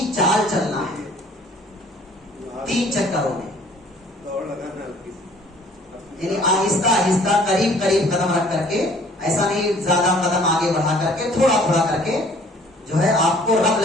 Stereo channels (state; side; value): normal; both; correlation 0.55